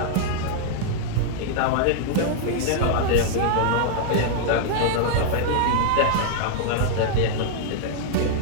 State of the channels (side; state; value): both; different; correlation -0.01